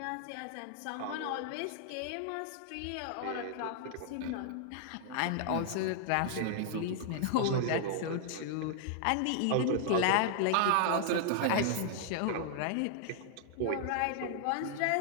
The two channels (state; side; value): different; both; correlation -0.01